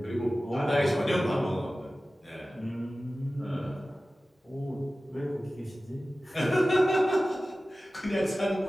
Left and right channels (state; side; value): normal; both; correlation 0.96